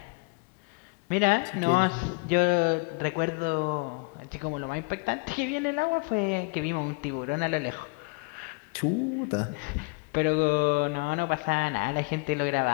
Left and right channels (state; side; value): quieter; right; 31.0 dB